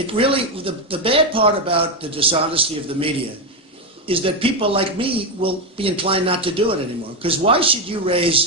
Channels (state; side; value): normal; both; correlation 0.08